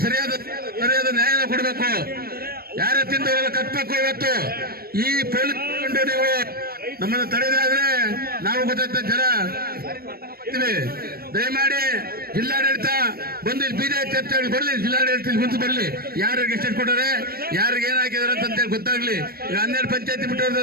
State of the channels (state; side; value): late; left; 0.44 ms